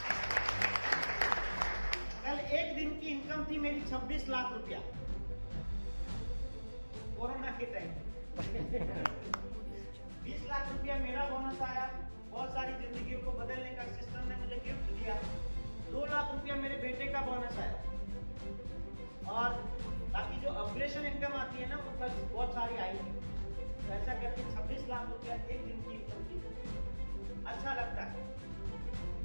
कल एक दिन की इनकम थी मेरी 26 लाख रुपया, कोरोना के टाइम 20 लाख रुपया मेरा बोनस आया। बहुत सारी जिंदगियों को बदलने का सिस्टम ने मुझे गिफ्ट दिया। 2 लाख रुपया मेरे बेटे का बोनस आया, और बाकी जो ऑपरेशन इनकम आती है ना वो कल बहुत सारी आई थी। तो ऐसा करके 26 लाख रुपया एक दिन की इनकम थी। अच्छा लगता है।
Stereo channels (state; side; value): inverted; both; correlation -1.00